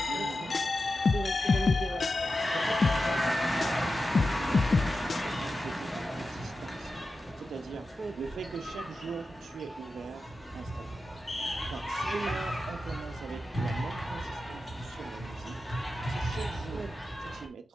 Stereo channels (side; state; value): both; normal; correlation 0.91